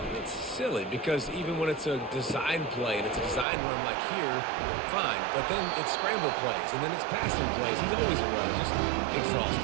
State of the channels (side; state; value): left; drops out; at 3.5 s